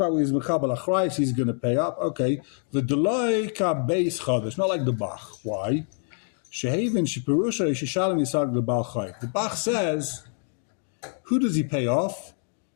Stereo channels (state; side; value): silent; right; 55 dB below the other